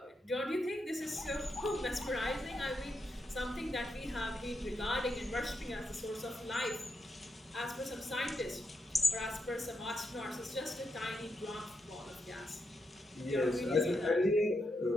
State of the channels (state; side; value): normal; both; correlation 0.84